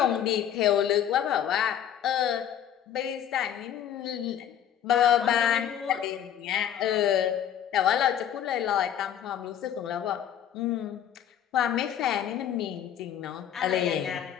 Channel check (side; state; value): right; quieter; 9.9 dB